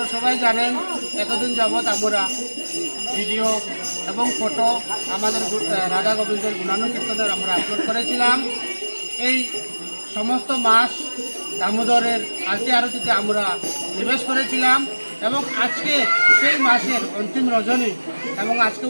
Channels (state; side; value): inverted; both; correlation -1.00